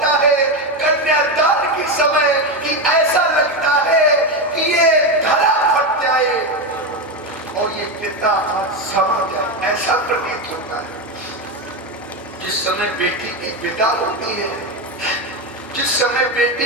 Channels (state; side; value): normal; both; correlation 0.12